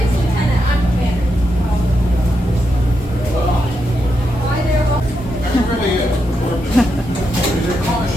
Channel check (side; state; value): both; normal; correlation 0.84